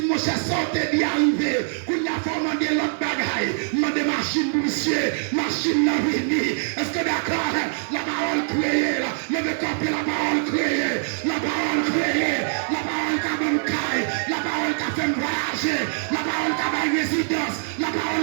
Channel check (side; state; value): left; silent; 63 dB below the other